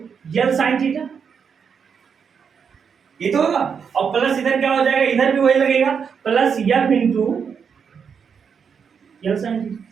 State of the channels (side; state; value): left; quieter; 6.6 dB